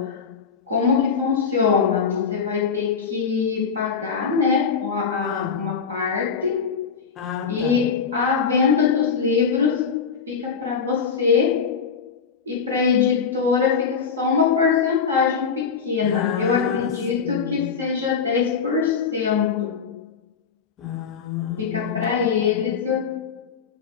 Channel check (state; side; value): quieter; right; 6.1 dB